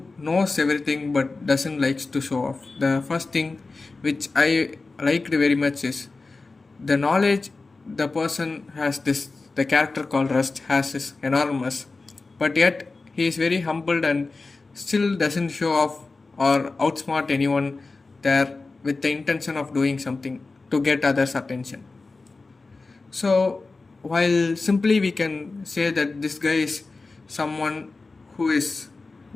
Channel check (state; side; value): quieter; right; 3.7 dB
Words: knows everything but doesn't likes to show off. The first thing which I liked very much is the knowledge the person has, this the character called Rust has is enormous, but yet he is very humbled and still doesn't show off or outsmart anyone there with the intention of doing something to get others' attention. So, while simply we can say that this guy is someone who is